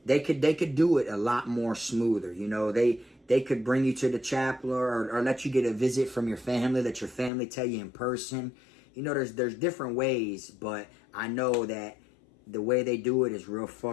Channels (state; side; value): drops out; right; at 7.3 s